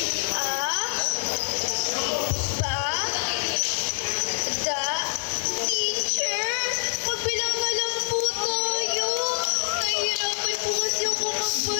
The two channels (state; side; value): silent; right; 58 dB below the other